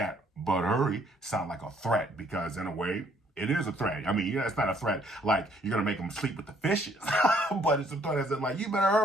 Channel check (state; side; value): normal; both; correlation 0.65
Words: but hurry sound like a threat, because in a way, it is a threat. I mean, yeah, it's not a threat like you're going to make them sleep with the fishes. But it's a threat as in like, you better